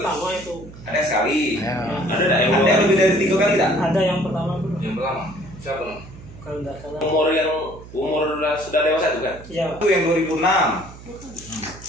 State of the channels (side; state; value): right; noise; hum, 17 dB below the sound